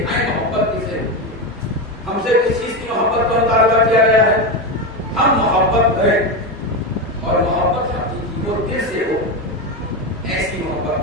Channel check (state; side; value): normal; both; correlation 0.15